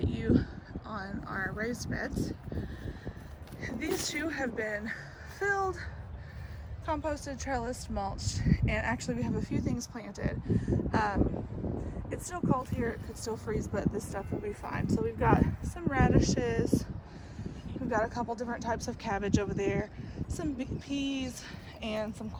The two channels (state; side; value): identical; both; correlation 1.00